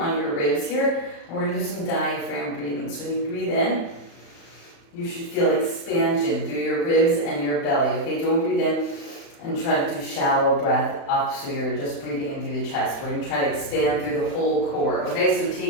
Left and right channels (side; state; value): right; late; 35 ms